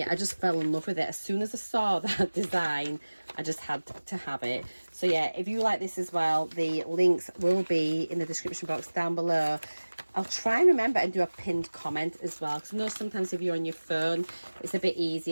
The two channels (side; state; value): both; inverted; correlation -1.00